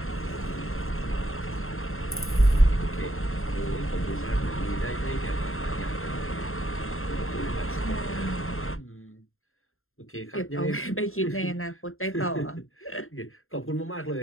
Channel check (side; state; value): right; late; 0.61 ms